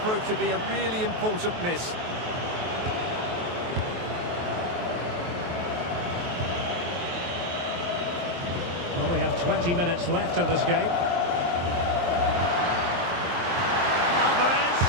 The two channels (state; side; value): late; left; 23 ms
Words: to be a really important miss. Well, we have 20 minutes left in this game. Alvarez.